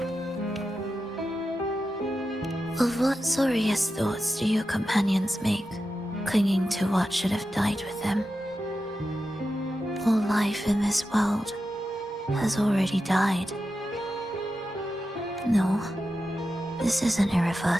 Of what sorriest thoughts do your companions make, clinging to what should have died with them? All life in this world has already died. No, this isn't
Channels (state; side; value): normal; both; correlation 0.90